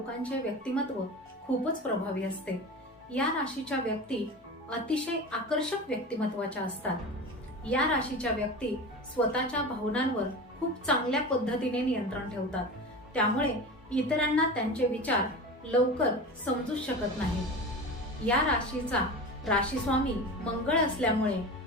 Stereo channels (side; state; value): both; normal; correlation 0.30